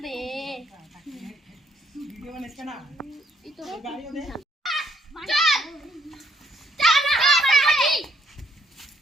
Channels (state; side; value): normal; both; correlation 0.68